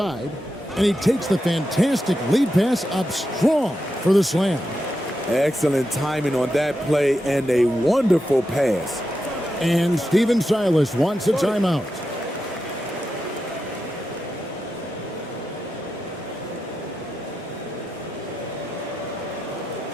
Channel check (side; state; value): both; normal; correlation 0.88